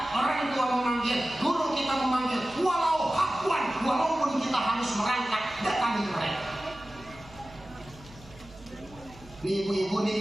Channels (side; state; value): right; noise; hum, 21 dB below the sound